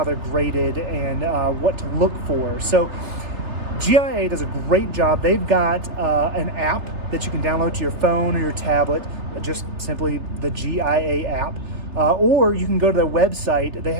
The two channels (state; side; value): late; left; 3.3 ms